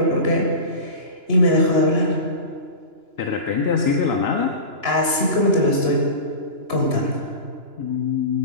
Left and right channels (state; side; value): late; left; 2.9 ms